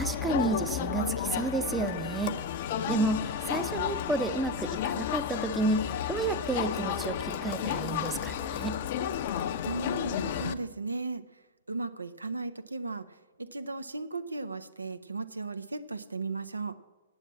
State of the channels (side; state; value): both; normal; correlation 0.05